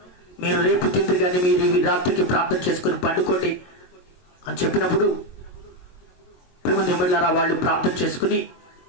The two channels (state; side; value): late; right; 22 ms